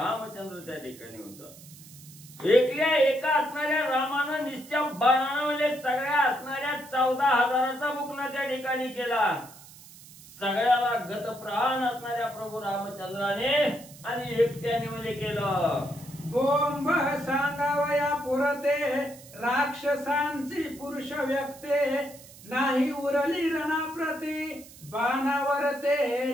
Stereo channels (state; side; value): noise; right; hiss, 20 dB below the sound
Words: त्या ठिकाणी होता। एकल्या एका असणाऱ्या रामानं निस्त्या बाणानं म्हणजे सगळ्या असणाऱ्या 14,000चा मुकना त्या ठिकाणी केला। सगळ्याला गतप्राण असणाऱ्या प्रभू रामचंद्राने आणि एकट्याने म्हणजे केलं। बोंब सांगावया पुरते राक्षसांची पुरुष व्यक्ते। नाही उरली रणाप्रती बाणावर ते